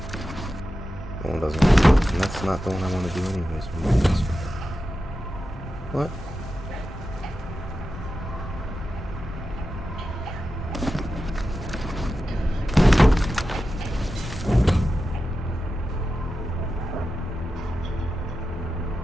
That one doesn't work. And that's not the one I want to do anyways. What?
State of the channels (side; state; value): both; normal; correlation 0.91